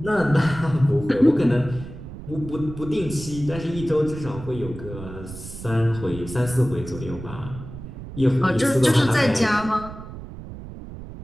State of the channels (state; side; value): noise; right; rumble, 12 dB below the sound